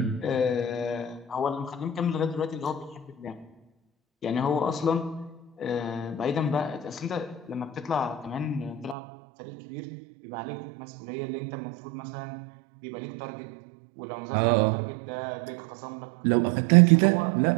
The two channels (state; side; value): drops out; left; at 9.0 s